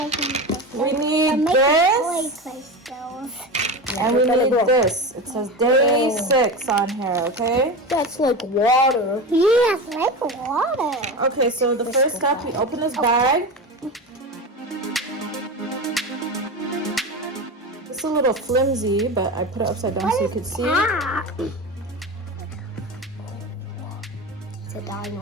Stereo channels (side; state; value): both; normal; correlation 0.24